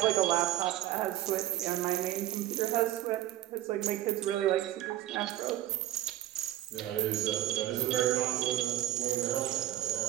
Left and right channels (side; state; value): left; quieter; 13.5 dB